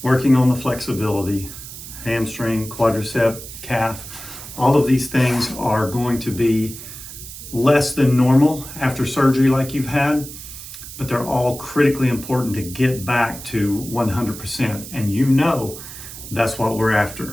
working on the flexibility, hamstring, quadricep, calf. All of these things are going to be less than normal after surgery like you've had, but they're all critically important to get back to 100%. And you know that's what we're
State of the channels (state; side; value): noise; right; hiss, 13 dB below the sound